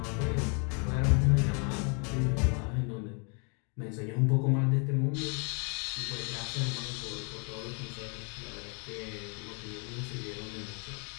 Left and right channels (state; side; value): quieter; right; 36.9 dB